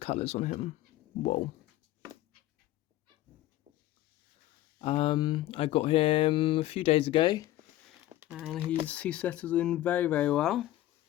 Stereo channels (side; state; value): right; quieter; 15.1 dB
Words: on him. Whoa. I got him a few days ago, and he settles in very, very well.